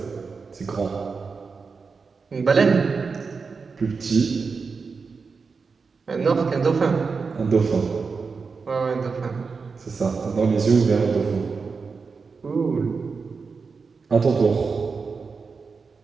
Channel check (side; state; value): left; quieter; 4.9 dB